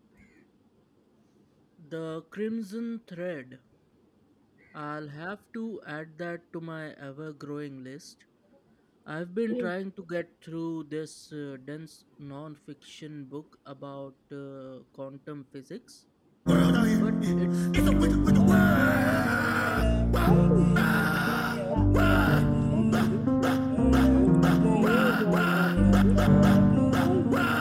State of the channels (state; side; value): identical; both; correlation 1.00